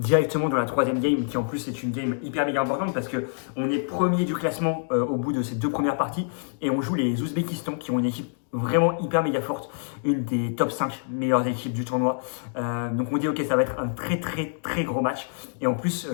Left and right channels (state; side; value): silent; right; digital silence